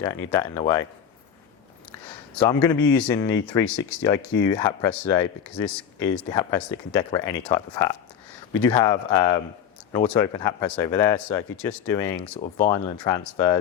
need that in the way. So I'm going to be using the 360 IQ hat press today, because this is the hat press that can decorate any type of hat. We do have an auto open hat press over there, so if you're just doing sort of vinyl and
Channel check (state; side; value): quieter; right; 8.4 dB